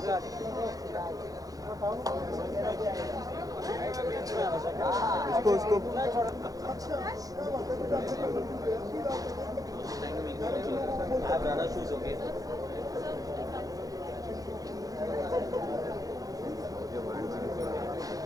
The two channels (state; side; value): late; left; 0.17 ms